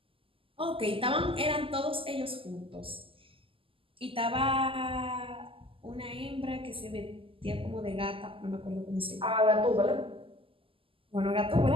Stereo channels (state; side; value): late; left; 0.26 ms